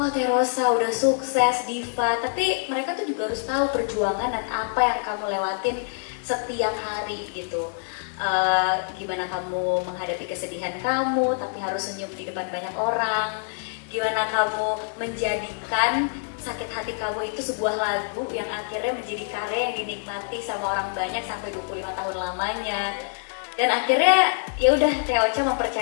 Teh Rosa udah sukses, diva, tapi mereka tuh juga harus tahu perjuangan dan apa yang kamu lewatin setiap hari gitu. Gimana kamu menghadapi kesedihan kamu, tapi harus senyum di depan banyak orang. Gimana kamu menjadikan sakit hati kamu itu sebuah lagu yang akhirnya menjadi karya yang dinikmati sama orang banyak sampai 25 tahun lamanya. Dan akhirnya ya udah Teocha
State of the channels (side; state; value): right; silent; 61 dB below the other